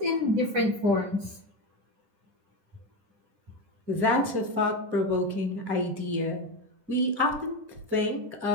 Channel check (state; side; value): late; left; 10 ms